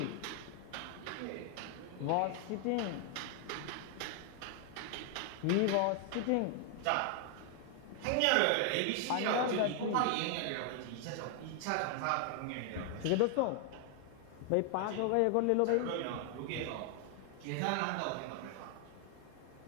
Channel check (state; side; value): different; both; correlation 0.00